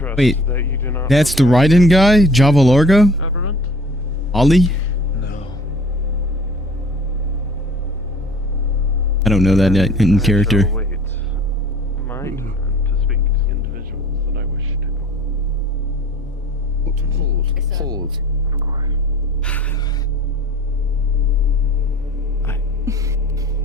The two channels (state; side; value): normal; both; correlation 0.48